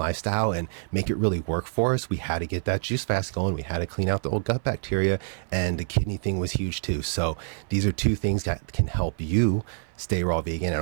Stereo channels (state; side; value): silent; left; 56 dB below the other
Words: and make it really work for us, we had to get that juice fast going. We had to clean out the old gut bacteria, and the kidney thing was huge too. So these are 2 things that can help you stay raw vegan,